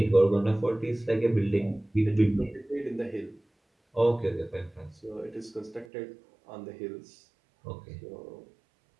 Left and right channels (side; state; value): left; drops out; at 5.9 s